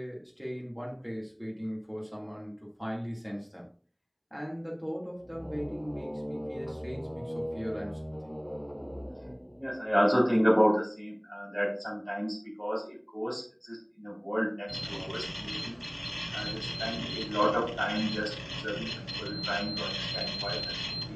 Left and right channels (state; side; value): identical; both; correlation 1.00